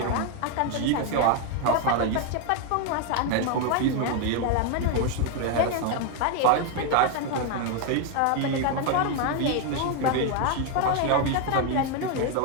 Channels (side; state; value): both; different; correlation 0.01